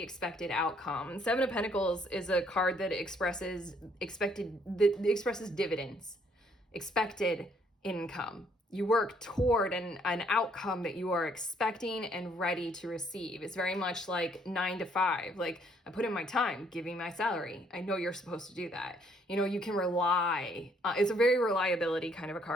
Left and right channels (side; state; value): both; normal; correlation 0.66